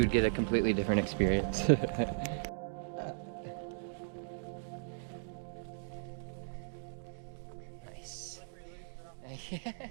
get a completely different experience. Nice.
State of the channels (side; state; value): left; silent; digital silence